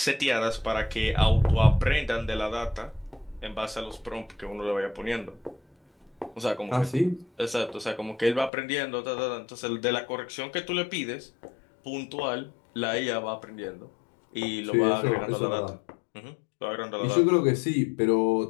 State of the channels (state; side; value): drops out; right; at 8.5 s